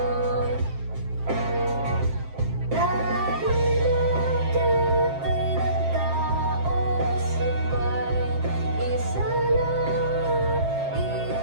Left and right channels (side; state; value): left; late; 7.5 ms